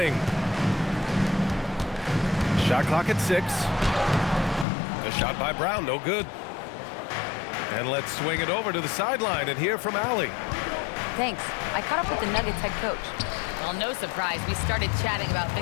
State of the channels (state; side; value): drops out; right; at 4.7 s